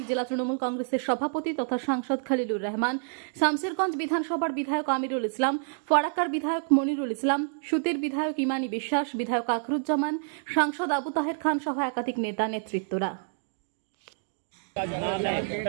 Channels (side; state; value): left; silent; digital silence